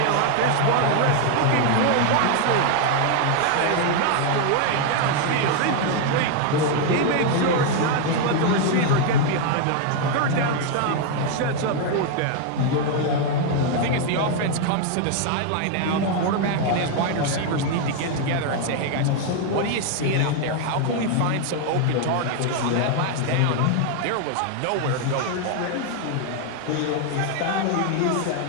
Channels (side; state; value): both; different; correlation 0.00